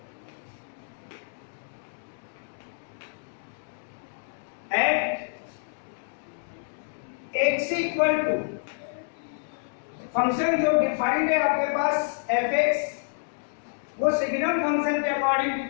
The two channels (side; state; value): right; silent; digital silence